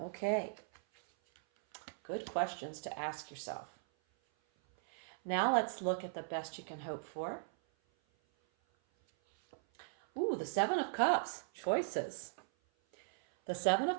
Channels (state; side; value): silent; left; 52 dB below the other